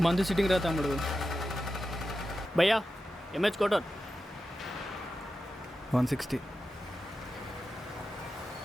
మందు సిట్టింగ్ రా తమ్ముడు. భయ్యా ఎంహెచ్ కోటర్ 160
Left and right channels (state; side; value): normal; both; correlation 0.91